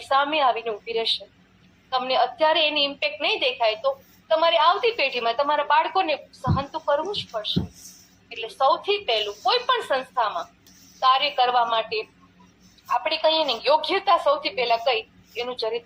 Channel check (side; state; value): both; identical; correlation 1.00